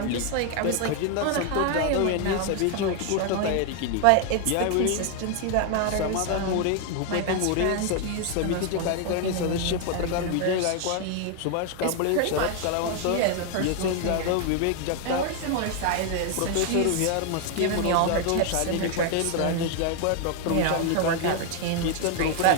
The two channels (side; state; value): both; different; correlation 0.01